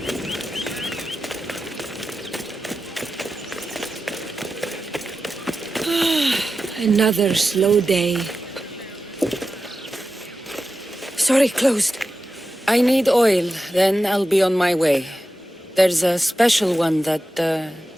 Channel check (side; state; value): both; normal; correlation 0.92